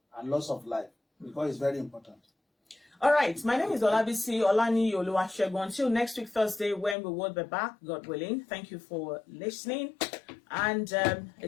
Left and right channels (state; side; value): drops out; right; at 7.0 s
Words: and loss of life, because it's very important. All right, my name is Olabisi Olaniyi Oluwasegun. Until next week, Thursday, when we will be back, God willing. Thank you for listening, and